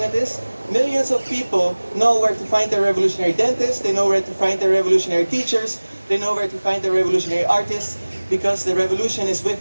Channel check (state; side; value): inverted; both; correlation -1.00